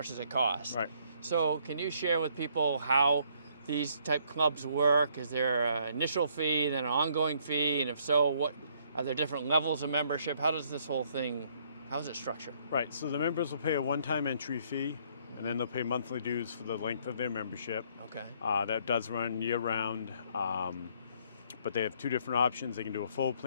does it cost? Right. So can you share with people how these type clubs work? Is there an initial fee and then an ongoing fee? And if so, what are there different levels of membership? How does this whole thing, how is it structured? Right. So the members will pay a one-time entry fee. and then they'll pay monthly dues for the length of their membership. Okay. That does run year-round, but they have two different options. They can do a full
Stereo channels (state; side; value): inverted; both; correlation -0.66